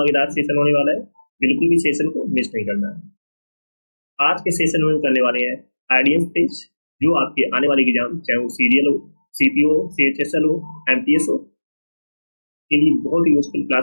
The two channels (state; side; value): inverted; both; correlation -1.00